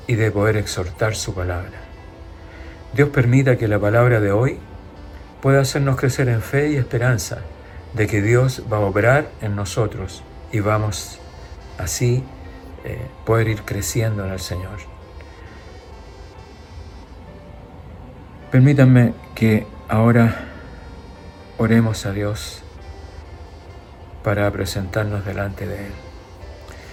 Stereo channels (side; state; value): both; identical; correlation 1.00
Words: y de poder exhortar su palabra. Dios permita que la palabra de hoy puede hacernos crecer en fe y esperanza de que Dios va a obrar en nosotros y vamos así poder ir creciendo en el Señor. Permítanme que ahora oremos a Dios para presentarnos delante de Él.